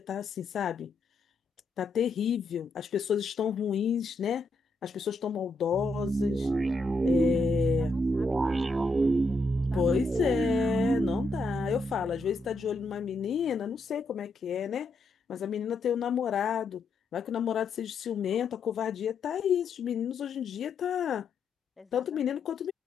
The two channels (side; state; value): right; quieter; 3.1 dB